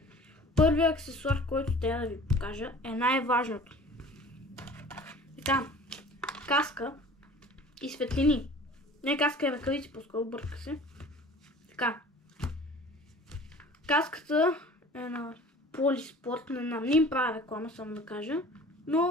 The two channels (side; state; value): both; normal; correlation 0.45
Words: първият аксесуар, който трябва да ви покажа е най-важното. Така, каска и светлини. Не каска и ръкавици, по-скоро бърка се. Така, каската е на Полиспорт, не им правя реклама, само да кажа,